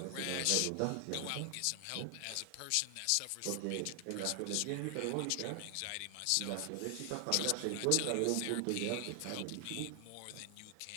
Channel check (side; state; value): both; different; correlation 0.00